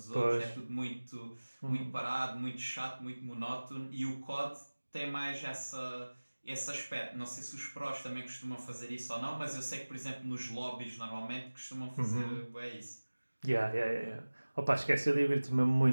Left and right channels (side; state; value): both; inverted; correlation -1.00